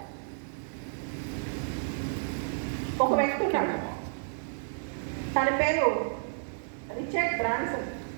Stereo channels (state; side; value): silent; left; digital silence